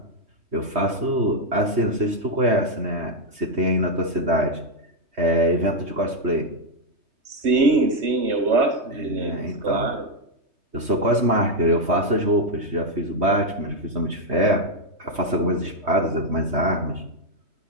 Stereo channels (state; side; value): late; left; 3.2 ms